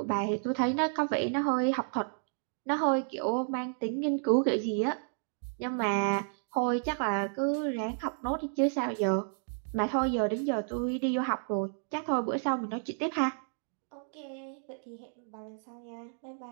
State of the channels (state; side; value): silent; left; digital silence